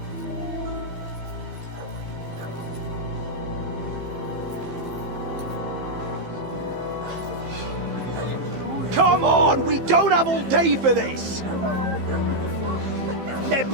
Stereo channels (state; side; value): late; left; 15 ms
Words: Come on, we don't have all day for this! Ne